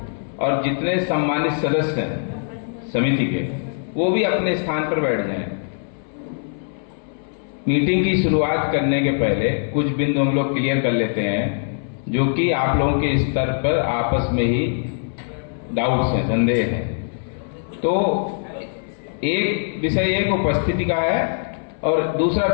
और जितने सम्मानित सदस्य हैं समिति के, वो भी अपने स्थान पर बैठ जाएं। मीटिंग की शुरुआत करने के पहले कुछ बिंदु हम लोग क्लियर कर लेते हैं जो कि आप लोगों के स्तर पर आपस में ही डाउट्स हैं, संदेह हैं। तो एक विषय एक उपस्थिति का है और दूसरा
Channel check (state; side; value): silent; right; 62 dB below the other